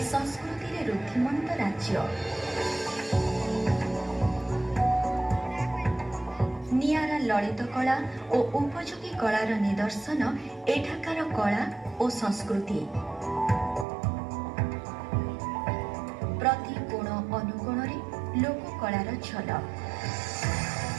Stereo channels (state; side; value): drops out; left; at 13.9 s